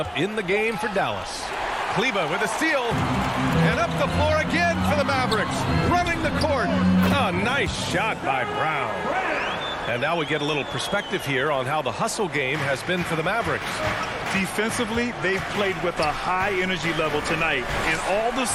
in the game for Dallas. Kleber with a steal. And up the floor again for the Mavericks. Running the court. A nice shot by Brown. And now we get a little perspective here on how the hustle game has been for the Mavericks. Defensively, they've played with a high energy level tonight. And all the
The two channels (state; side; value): identical; both; correlation 1.00